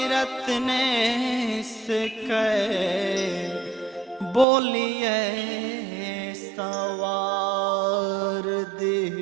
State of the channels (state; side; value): drops out; left; at 4.5 s